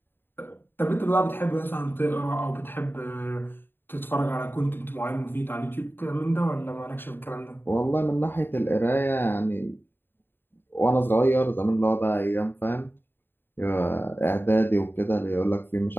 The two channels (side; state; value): right; late; 0.098 ms